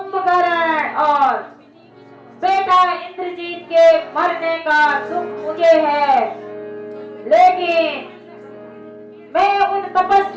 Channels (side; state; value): both; identical; correlation 1.00